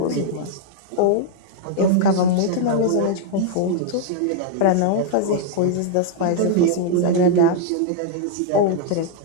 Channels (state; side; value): different; both; correlation -0.01